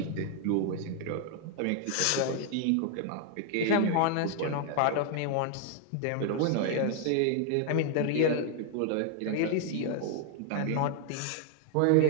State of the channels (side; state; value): both; different; correlation 0.00